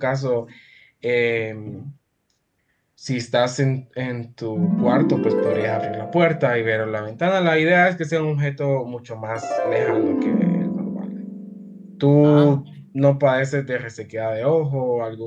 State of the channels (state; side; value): identical; both; correlation 1.00